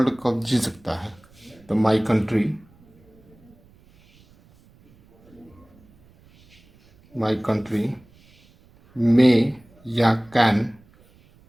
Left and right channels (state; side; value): noise; right; rumble, 29 dB below the sound